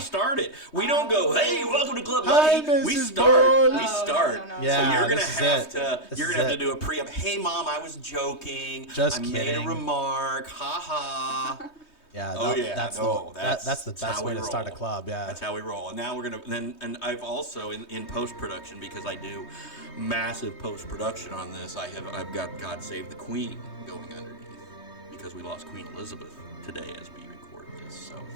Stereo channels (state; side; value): late; right; 3.2 ms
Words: started. We don't go, hey, welcome to Club Hi, Buddy. We Mrs. start. Boyd. We Oh, start. no. Yeah, So you're gonna this is have it. to. This You're is gonna have to it. do a pre-up. Hey, Mom, I was joking. Just I made kidding. a remark. Ha ha. Yeah. Oh yeah. That's no, the that's the best how way we to start a roll. club. Yeah. That's how we roll. And now we're gonna and I've also in post production, because I do massive post production on this. I've got God Save the Queen going underneath because we lost Queen Elizabeth today as we record this. So